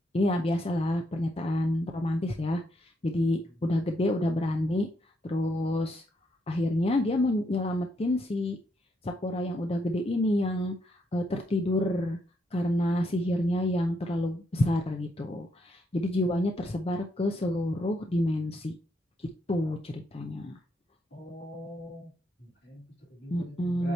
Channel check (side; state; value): both; normal; correlation 0.77